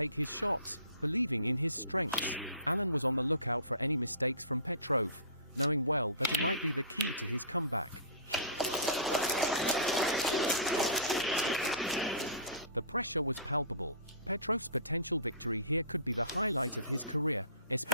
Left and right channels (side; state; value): both; inverted; correlation -0.38